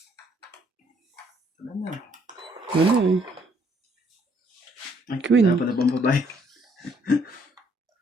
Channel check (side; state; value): both; normal; correlation 0.67